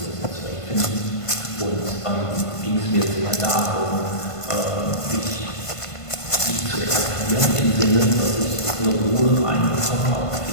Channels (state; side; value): late; right; 1.5 ms